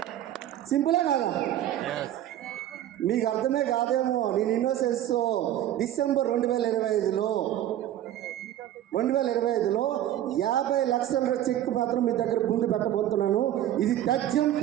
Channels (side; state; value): left; quieter; 12.3 dB